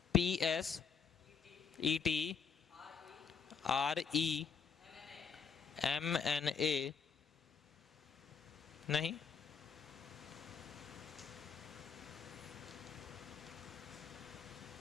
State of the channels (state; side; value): quieter; right; 6.2 dB